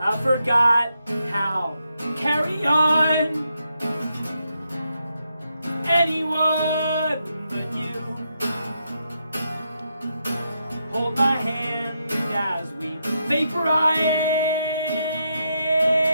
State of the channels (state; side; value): inverted; both; correlation -0.82